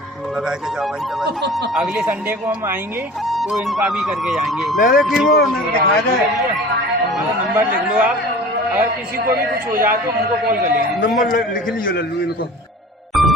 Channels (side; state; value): both; normal; correlation 0.41